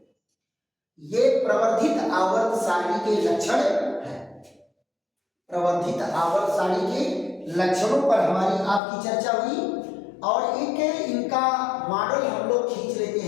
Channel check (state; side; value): drops out; right; at 8.8 s